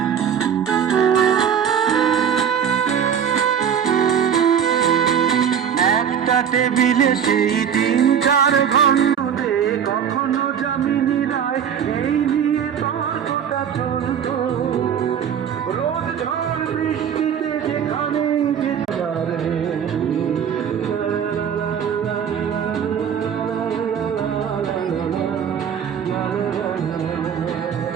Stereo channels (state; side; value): quieter; left; 8.2 dB